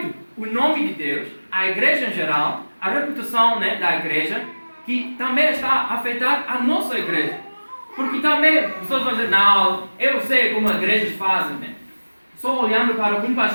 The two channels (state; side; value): inverted; both; correlation -1.00